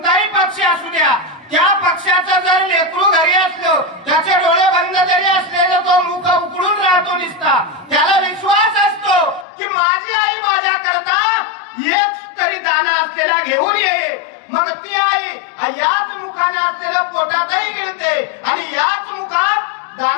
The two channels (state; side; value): drops out; right; at 9.5 s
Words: पक्षी असू द्या, त्या पक्षाचं जर लेकरू घरी असलो, त्याचे डोळे बंद जरी असले तर तो मुख उघडून राहतो निसता। त्याला विश्वास असतो की माझी आई माझ्या करता एक तरी दाना असलेला घेऊन येईल, मग ती आई याच मुखाने असलेल्या पोटातही गिळते आणि याच मुखात